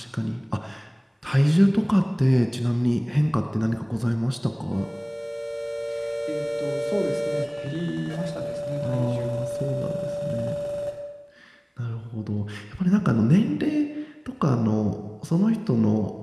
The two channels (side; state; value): both; identical; correlation 1.00